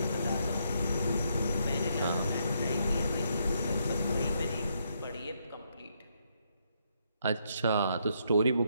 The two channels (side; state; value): both; inverted; correlation -0.76